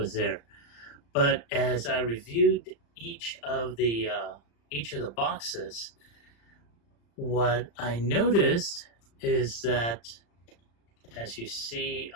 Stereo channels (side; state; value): right; late; 35 ms